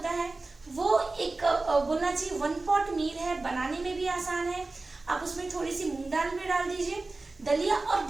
है वो एक बोलना चाहिए 1 पॉट मील है, बनाने में भी आसान है। आप उसमें थोड़ी सी मूंग दाल भी डाल दीजिए, दलिया और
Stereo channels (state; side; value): quieter; left; 3.3 dB